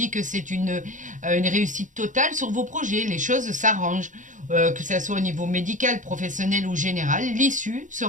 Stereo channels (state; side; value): late; left; 0.37 ms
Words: que c'est une réussite totale sur vos projets. Les choses s'arrangent, que ce soit au niveau médical, professionnel ou général. L'issue